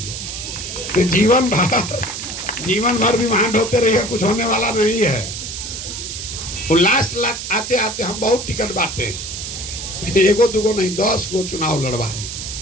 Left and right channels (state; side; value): noise; right; hiss, 7 dB below the sound